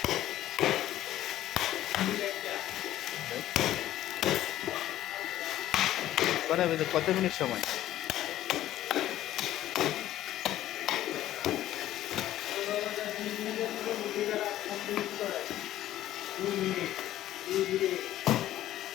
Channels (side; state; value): right; quieter; 13.5 dB